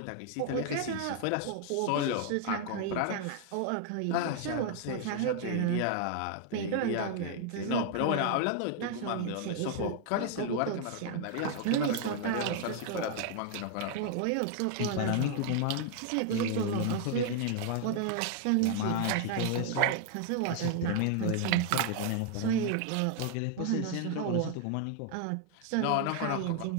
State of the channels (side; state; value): both; different; correlation 0.00